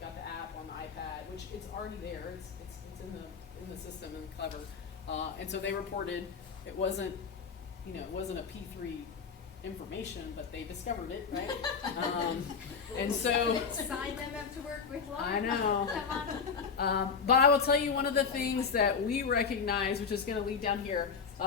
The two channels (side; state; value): right; quieter; 5.8 dB